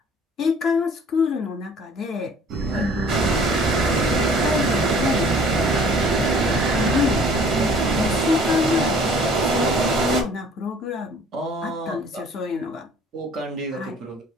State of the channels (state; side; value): normal; both; correlation 0.53